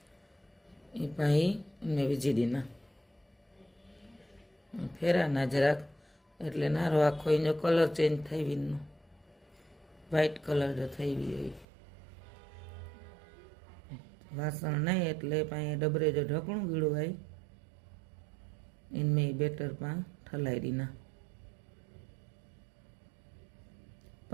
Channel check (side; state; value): left; drops out; at 11.7 s